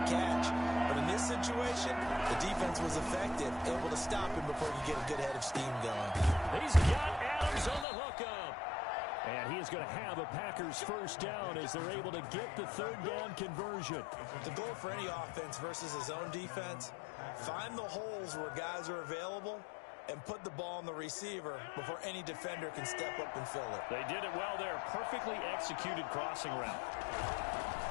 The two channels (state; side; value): drops out; right; at 7.9 s